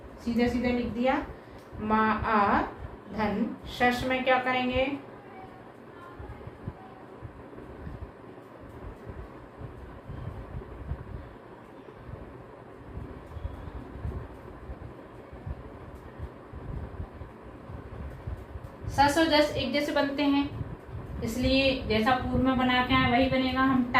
सीधा सीधा लिख दिया, माँ आ धन शश में क्या करेंगे, सस और जस एक जैसे बनते हैं, इसलिए जैसा पूर्व में बना के आए वही बनेगा, हम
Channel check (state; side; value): identical; both; correlation 1.00